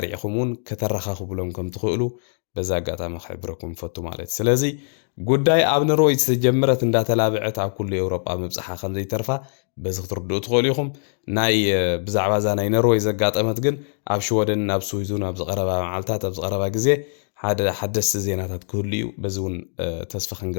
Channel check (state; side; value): silent; right; digital silence